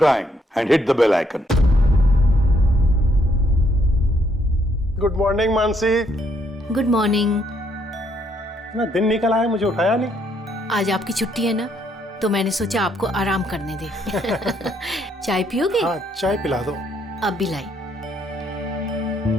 and hit the bell icon. Good morning Mansi. Good morning. ना दिन निकल आया, मुझे उठाया नहीं। आज आपकी छुट्टी है ना, तो मैंने सोचा आपको आराम करने दे। चाय पियोगे? हाँ, चाय पिला दो। अब भी लाई।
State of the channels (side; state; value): both; normal; correlation 0.71